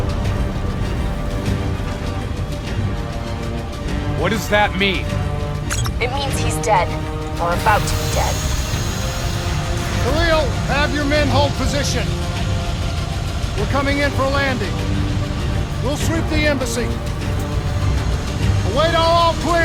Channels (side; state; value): both; identical; correlation 1.00